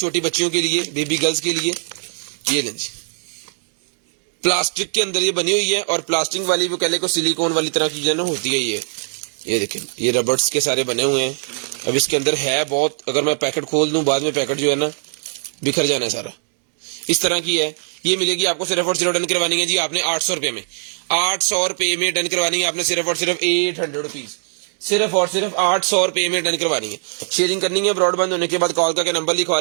बच्चियों के लिए, बेबी गर्ल्स के लिए। ये लें जी, प्लास्टिक के अंदर ये बनी हुई है और प्लास्टिक वाली वो कह ले को सिलिकॉन वाली तरह की जो ना होती है ये देखें, ये रबर्स के सारे बने हुए हैं। अब इसके अंदर है बहुत, अगर मैं पैकेट खोल दूं बाद में पैकेट जो है ना बिखर जाना है सारा, इस तरह की है। ये मिलेगी आपको सिर्फ और सिर्फ डन करवानी है जी आपने 800 रुपए में। 800 रुपए में डन करवानी है आपने सिर्फ और सिर्फ 800 रुपीज। सिर्फ और सिर्फ 800 रुपए में डन करवानी है। शेयरिंग करनी है, ब्रॉडबैंड होने के बाद कॉल करके नंबर लिखवा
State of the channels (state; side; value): silent; left; digital silence